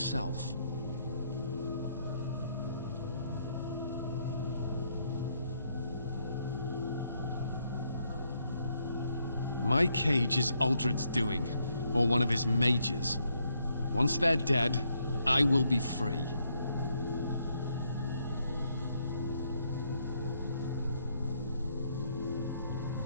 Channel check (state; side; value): inverted; both; correlation -0.75